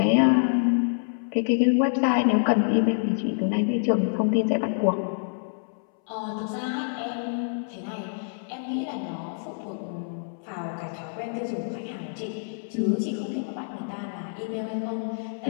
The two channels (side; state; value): right; silent; 60 dB below the other